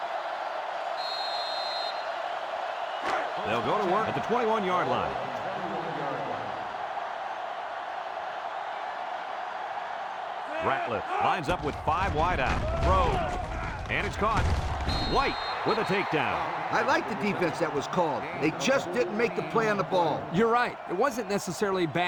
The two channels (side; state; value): both; identical; correlation 1.00